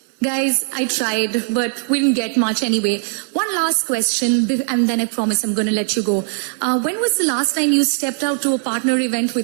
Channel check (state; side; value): silent; left; 58 dB below the other